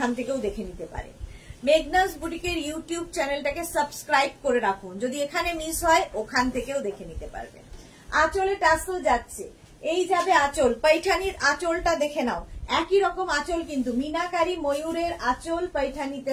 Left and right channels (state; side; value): identical; both; correlation 1.00